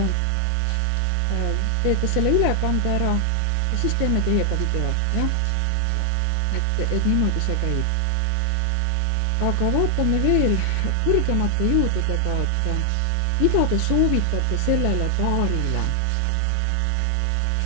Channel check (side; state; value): both; different; correlation 0.00